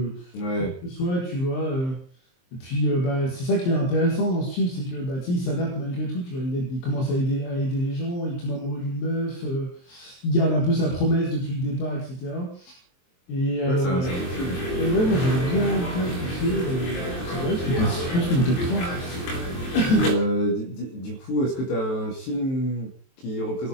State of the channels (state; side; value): late; right; 23 ms